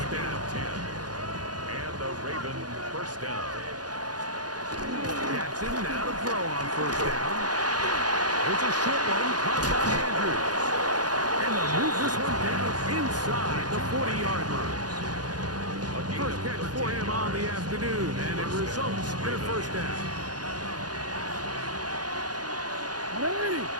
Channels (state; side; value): late; left; 0.69 ms